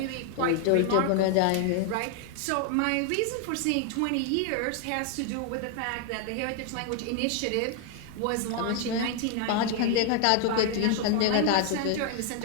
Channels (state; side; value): different; both; correlation 0.01